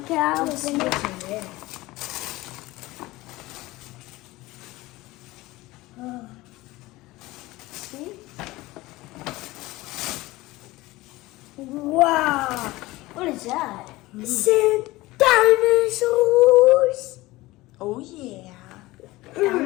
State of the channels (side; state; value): right; quieter; 19.5 dB